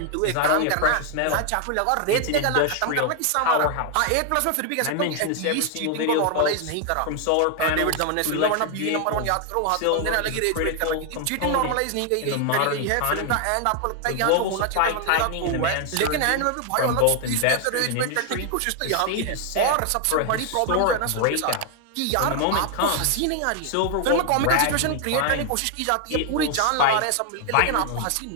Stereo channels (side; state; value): both; different; correlation 0.00